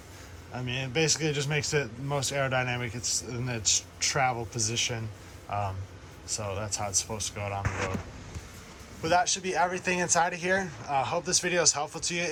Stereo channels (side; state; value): both; identical; correlation 1.00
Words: I mean, it basically just makes it most aerodynamic. It's in its travel position. So that's how it's supposed to go down the road. But that should be everything inside of here. Hope this video is helpful to you.